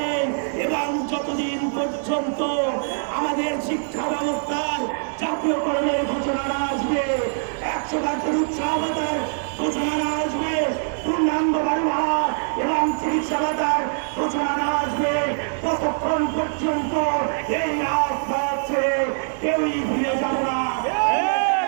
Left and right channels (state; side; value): silent; left; digital silence